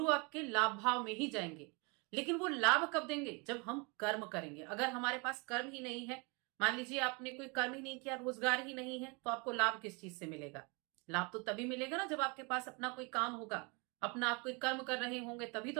आपके लाभ भाव में ही जाएंगे। लेकिन वो लाभ कब देंगे? जब हम कर्म करेंगे। अगर हमारे पास कर्म ही नहीं है, मान लीजिए आपने कोई कर्म ही नहीं किया, रोजगार ही नहीं है, तो आपको लाभ किस चीज से मिलेगा? लाभ तो तभी मिलेगा ना जब आपके पास अपना कोई काम होगा, अपना आप कोई कर्म कर रहे होंगे, तभी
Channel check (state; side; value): quieter; left; 30.5 dB